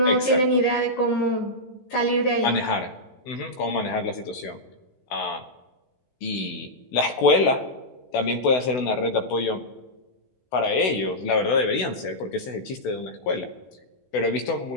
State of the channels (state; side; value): late; right; 16 ms